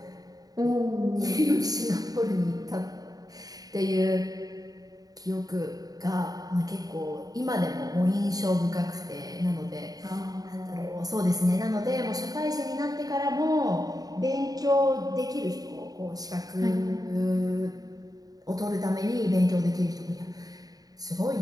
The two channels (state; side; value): late; left; 0.18 ms